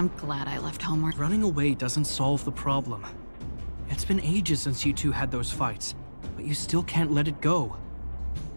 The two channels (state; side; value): inverted; both; correlation -1.00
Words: glad I left home. Running away doesn't solve the problem. It's been ages since you two had those fights, but you still can't let it go.